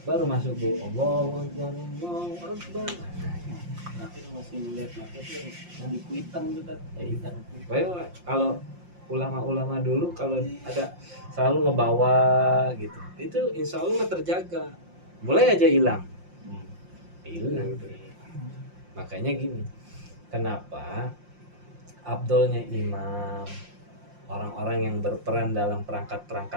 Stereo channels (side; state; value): left; late; 5.7 ms